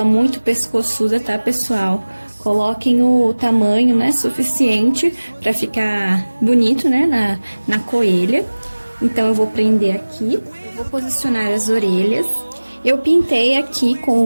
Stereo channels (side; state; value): both; inverted; correlation -1.00